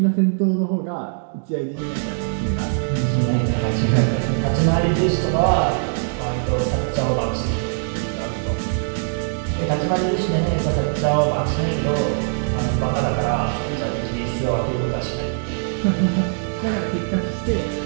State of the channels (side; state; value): left; silent; digital silence